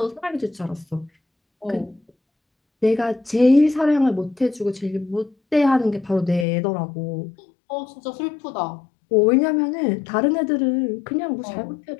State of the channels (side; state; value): right; drops out; at 6.5 s